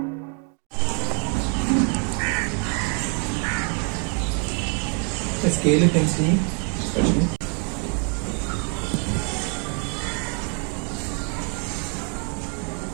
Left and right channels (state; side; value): quieter; left; 39.4 dB